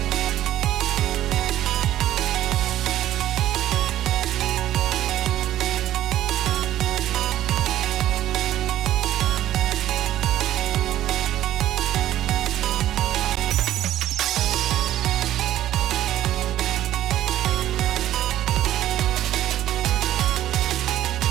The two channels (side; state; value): left; quieter; 13.0 dB